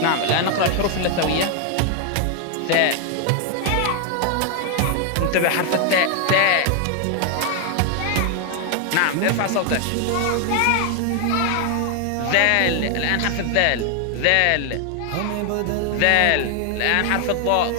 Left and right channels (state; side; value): different; both; correlation 0.00